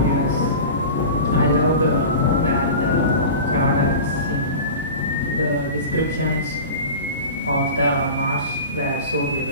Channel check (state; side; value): inverted; both; correlation -0.33